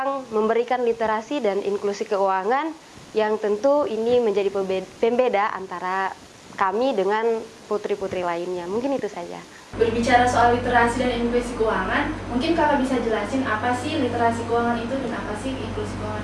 memberikan literasi dan inklusi keuangan yang tentu ini menjadi pembeda antara kami dengan putri-putri lainnya. Mungkin itu saja. Berbicara soal literasi dan inklusi keuangan, mungkin Kakak bisa jelasin apa sih literasi keuangan itu dan apa sih inklusi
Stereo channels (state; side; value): identical; both; correlation 1.00